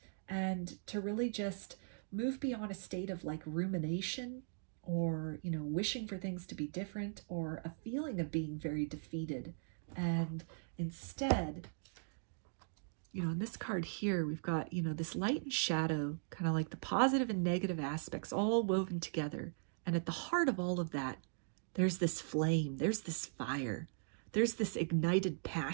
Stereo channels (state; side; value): silent; left; digital silence